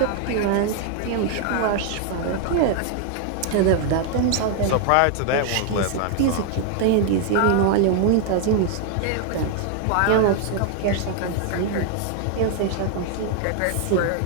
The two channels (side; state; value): both; different; correlation 0.00